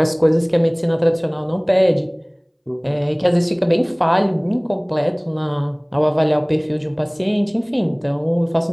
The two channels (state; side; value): identical; both; correlation 1.00